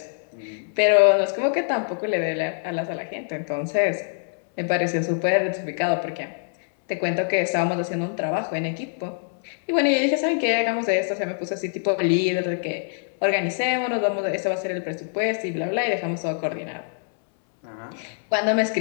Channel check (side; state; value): right; silent; 62 dB below the other